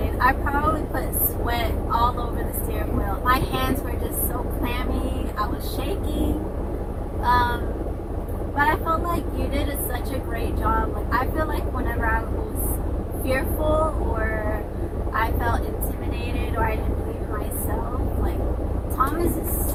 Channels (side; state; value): both; identical; correlation 1.00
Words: I probably put sweat all over the steering wheel. My hands were just so clammy. I was shaking. But I felt like you did such a great job. Like, I feel like whenever I was fearful or I felt intimidated or I didn't believe in myself. Like, Thomas is